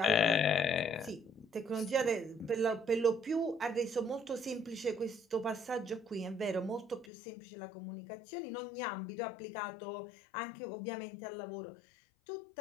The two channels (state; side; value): drops out; right; at 7.1 s